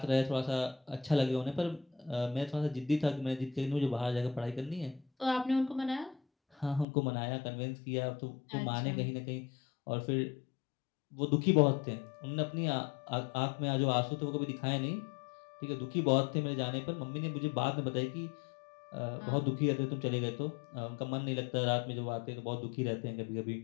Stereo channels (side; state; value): right; drops out; at 6.9 s